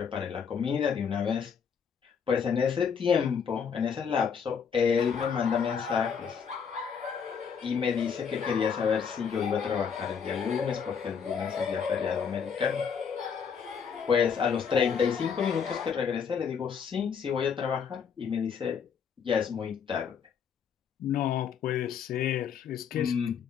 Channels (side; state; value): right; quieter; 6.8 dB